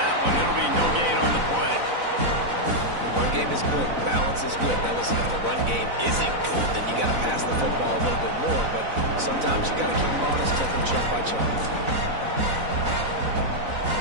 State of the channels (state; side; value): late; left; 4.0 ms